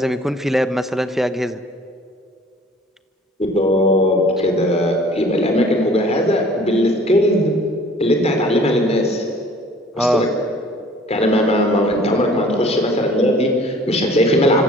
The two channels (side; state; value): both; normal; correlation 0.51